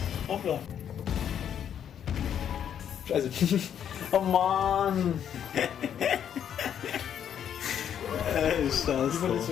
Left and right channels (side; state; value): right; quieter; 9.1 dB